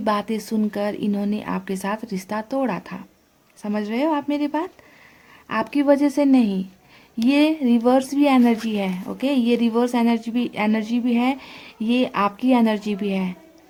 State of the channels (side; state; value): both; identical; correlation 1.00